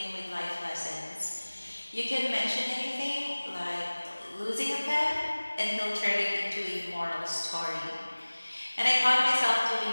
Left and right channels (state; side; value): inverted; both; correlation -1.00